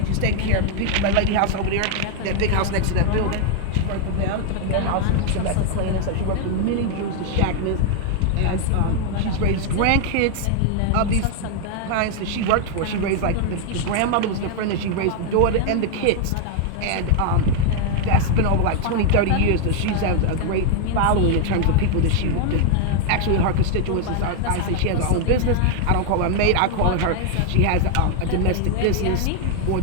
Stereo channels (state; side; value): different; both; correlation 0.00